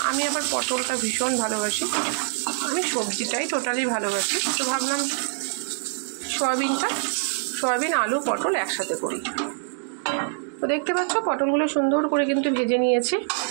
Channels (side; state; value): left; silent; digital silence